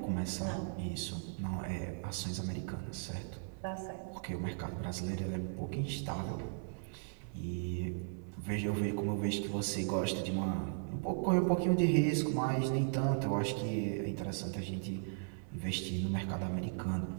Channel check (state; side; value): silent; left; digital silence